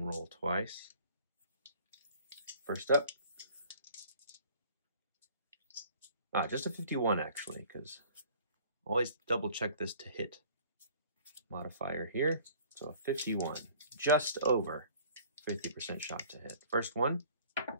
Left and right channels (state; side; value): inverted; both; correlation -0.51